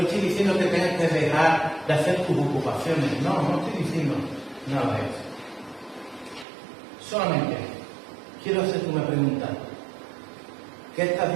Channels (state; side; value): drops out; left; at 6.5 s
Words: estoy diciendo que tengas que dejar de hacer tus ocupaciones, no estoy diciendo nada de eso. Solamente quiero hacerte una pregunta. ¿Qué estás